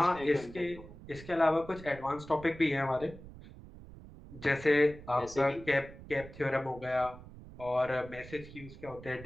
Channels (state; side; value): noise; right; rumble, 16 dB below the sound